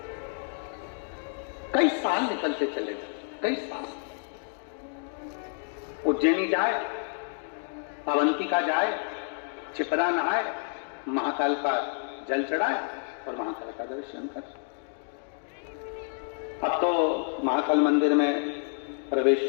कई साल निकलते चले गए, कई साल। उज्जैनी जाए, अवंतिका जाए, छिपरा नहाए, महाकाल का जल चढ़ाए और महाकाल का दर्शन कर। अब तो महाकाल मंदिर में प्रवेश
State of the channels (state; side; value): silent; right; 59 dB below the other